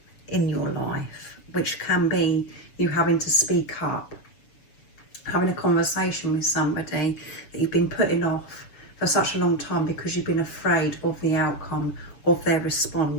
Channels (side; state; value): right; late; 7.0 ms